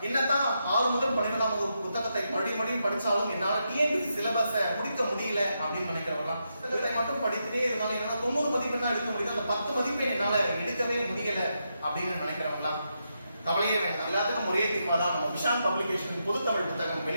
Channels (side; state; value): both; inverted; correlation -0.84